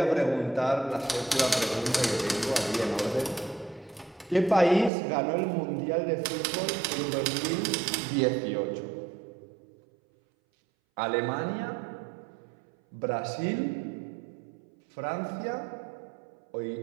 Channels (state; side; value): drops out; left; at 4.9 s